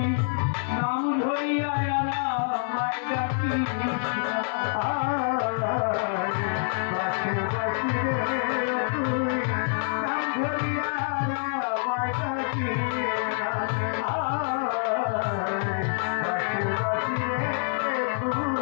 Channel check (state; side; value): silent; right; 60 dB below the other